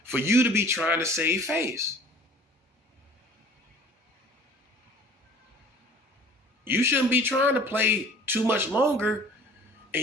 for you to be trying to save face. You shouldn't be trying to play too much longer,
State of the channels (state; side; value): normal; both; correlation 0.48